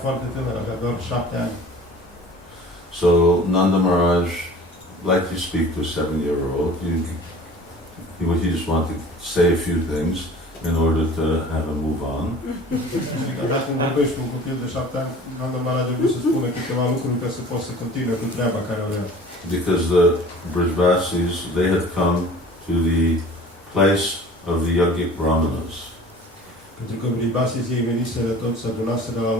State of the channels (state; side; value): normal; both; correlation 0.44